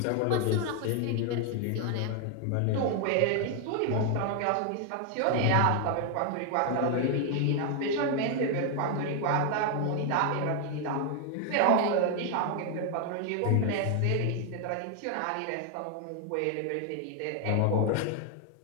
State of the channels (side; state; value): both; different; correlation 0.00